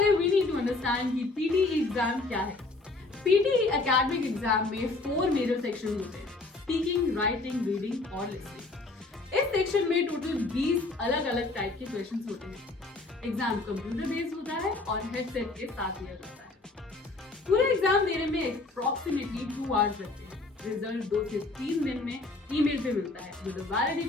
we need to understand कि पीटीई एग्जाम क्या है। पीटीई एकेडमिक एग्जाम में 4 मेजर सेक्शन होते हैं, स्पीकिंग, राइटिंग, रीडिंग और लिसनिंग। इस सेक्शन में टोटल 20 अलग अलग टाइप के क्वेश्चंस होते हैं। एग्जाम कंप्यूटर बेस्ड होता है और हेडसेट के साथ लिया जाता है। पूरे एग्जाम देने में अप्रॉक्सीमेटली 2 आवर्स लगते हैं। रिजल्ट 2 से 3 दिन में ईमेल पे मिलता है with a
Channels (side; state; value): right; quieter; 3.3 dB